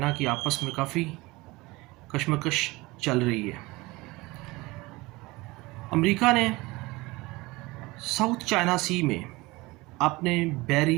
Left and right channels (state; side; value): quieter; left; 21.9 dB